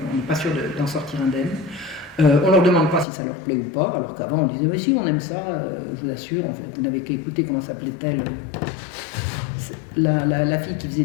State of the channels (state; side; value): drops out; right; at 3.1 s